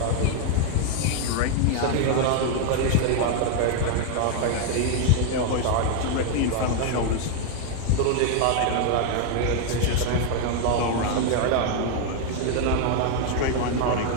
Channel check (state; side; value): different; both; correlation 0.00